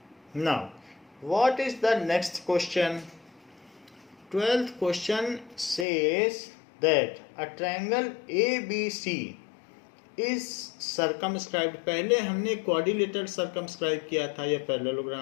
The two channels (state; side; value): drops out; right; at 5.9 s